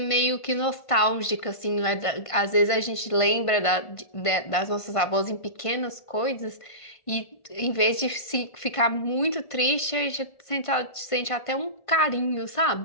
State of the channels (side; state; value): right; late; 1.5 ms